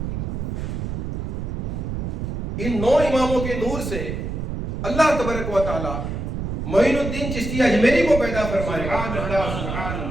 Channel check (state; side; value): noise; right; rumble, 4 dB below the sound